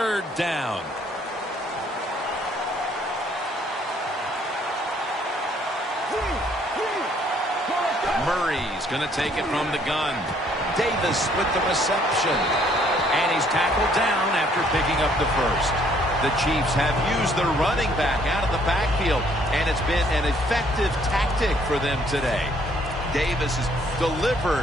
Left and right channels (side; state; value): both; normal; correlation 0.64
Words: down. Murray's going to take it from the gun. Davis with the reception. And he's tackled down after picking up the first. The Chiefs have used their running back out of the backfield, and it's been an effective tactic for them today. Davis has